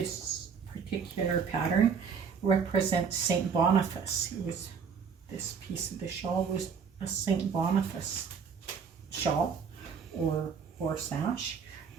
particular pattern represents Saint Boniface. It was, this piece of the shawl was a Saint Boniface shawl or sash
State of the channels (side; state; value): left; quieter; 6.3 dB